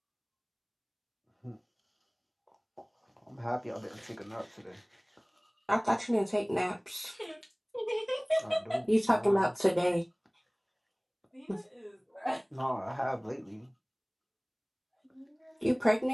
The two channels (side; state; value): both; identical; correlation 1.00